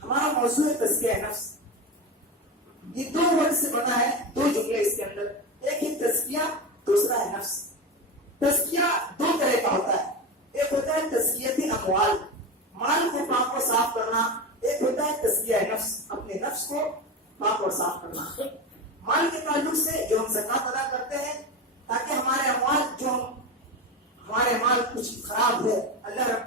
ہمارا موضوع ہے تزکیہ نفس. یہ دو ورڈ سے بنا ہے، دو جملے اس کے اندر، ایک ہے تزکیہ، دوسرا ہے نفس. تزکیہ دو طرح کا ہوتا ہے، ایک ہوتا ہے تزکیت اموال، مال کو پاک اور صاف کرنا، ایک ہوتا ہے تزکیہ نفس، اپنے نفس کو پاک اور صاف کرنا. مال کے تعلق سے جو ہم زکات ادا کرتے ہیں تاکہ ہمارے اموال، جو ہمارے مال کچھ خراب ہے، اللہ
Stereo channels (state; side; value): normal; both; correlation 0.22